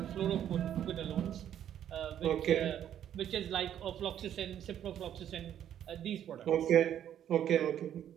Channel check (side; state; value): left; quieter; 10.3 dB